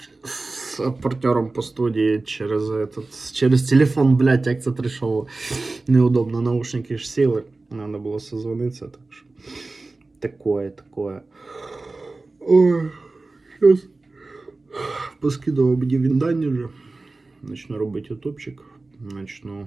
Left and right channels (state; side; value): quieter; left; 3.4 dB